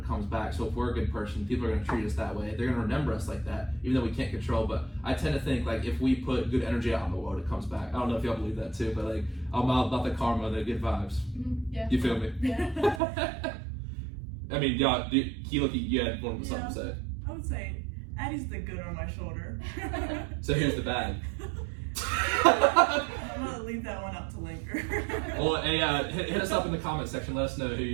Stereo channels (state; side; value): drops out; left; at 13.0 s